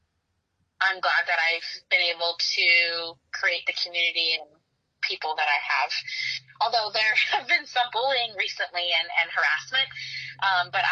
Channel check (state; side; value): identical; both; correlation 1.00